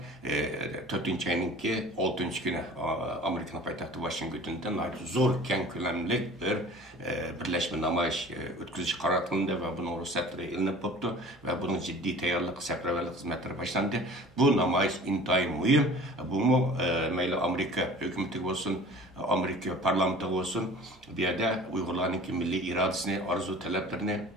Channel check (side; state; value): right; noise; hum, 28 dB below the sound